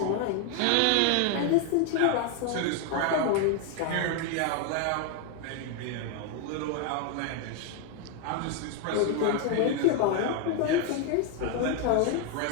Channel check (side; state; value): both; different; correlation 0.01